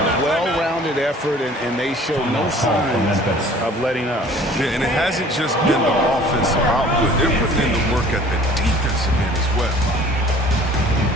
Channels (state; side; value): normal; both; correlation 0.50